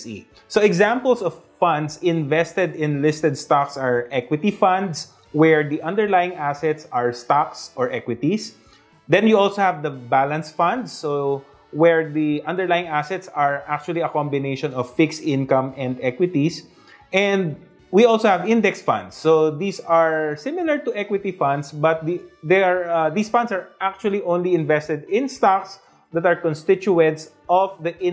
So examples of funds invested in listed stocks are equity funds, where the underlying assets are stocks or equities. Then you also have the balance funds, so where the underlying assets are actually a combination of fixed income and equities. And we also have index funds. So these are similar to equity funds, but these funds are actually only invested in stocks that are constituents of the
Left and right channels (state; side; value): identical; both; correlation 1.00